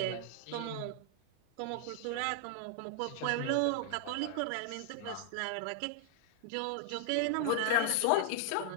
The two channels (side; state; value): both; different; correlation -0.01